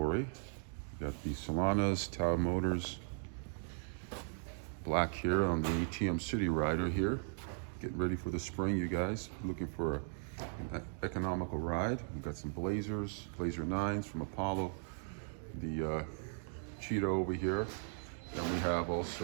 We got the Solanas, Taotao Motors, black here on the ATM City Rider here. Getting ready for the spring, you guys. Looking for an economical ride. We've got some Blazers, Blazer 9s from Apollo, the Cheetah over here. Then we have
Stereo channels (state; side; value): silent; left; 53 dB below the other